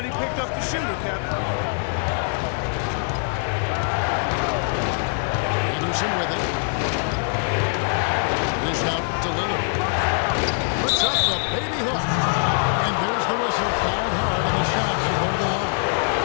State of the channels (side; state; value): right; silent; 63 dB below the other